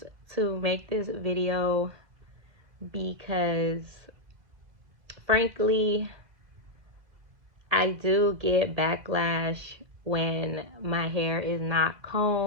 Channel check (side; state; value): left; late; 1.9 ms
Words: to make this video because, frankly, I do get backlash when my hair is not